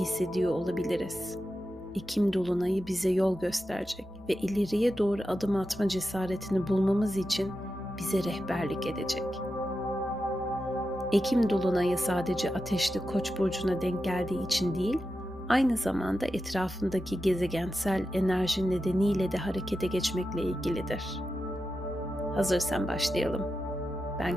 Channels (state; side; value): normal; both; correlation 0.90